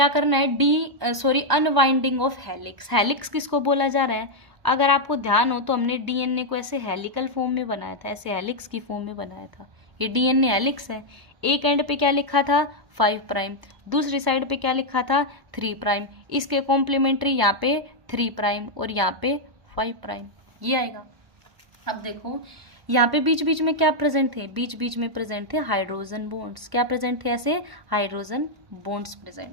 करना है, अनवाइंडिंग ऑफ हेलिक्स। हेलिक्स किसको बोला जा रहा है? अगर आपको ध्यान हो तो हमने डीएनए को ऐसे हेलिकल फॉर्म में बनाया था, ऐसे हेलिक्स की फॉर्म में बनाया था। ये डीएनए हेलिक्स है। एक एंड पे क्या लिखा था? 5 प्राइम, दूसरी साइड पे क्या लिखा था? 3 प्राइम। इसके कॉम्प्लीमेंट्री यहाँ पे 3 प्राइम और यहाँ पे 5 प्राइम, ये आएगा। अब देखो यहाँ पे बीच बीच में क्या प्रेजेंट थे? बीच बीच में प्रेजेंट थे हाइड्रोजन बॉन्ड्स। क्या प्रेजेंट थे? ऐसे हाइड्रोजन बॉन्ड्स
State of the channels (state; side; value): late; left; 1.0 ms